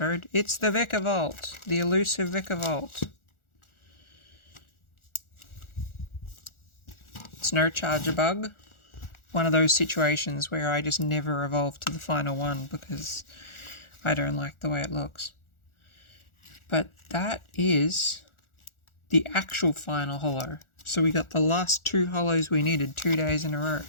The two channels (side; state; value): right; late; 1.4 ms